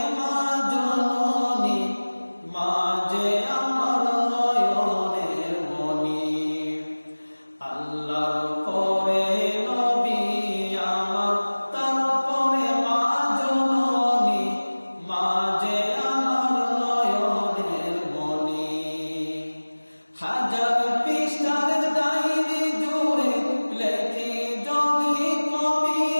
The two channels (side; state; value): both; inverted; correlation -1.00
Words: মা জননী, মা যে আমার নয়নের মণি। আল্লাহর পরে নবী আমার, তারপরে মা জননী, মা যে আমার নয়নের মণি। হাজার পৃষ্ঠার ডায়েরি জুড়ে লেখি যদি